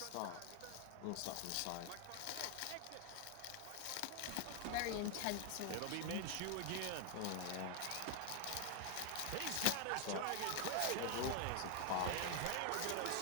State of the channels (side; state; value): both; different; correlation 0.00